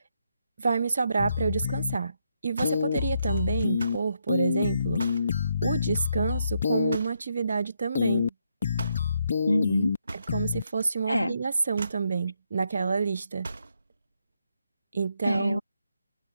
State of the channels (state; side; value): inverted; both; correlation -0.78